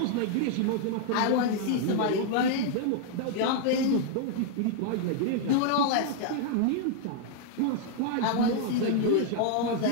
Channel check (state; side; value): different; both; correlation 0.00